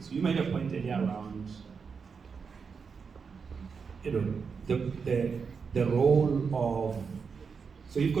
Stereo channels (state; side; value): quieter; left; 5.7 dB